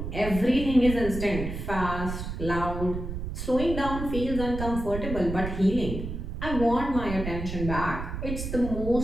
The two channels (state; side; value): noise; right; rumble, 6 dB below the sound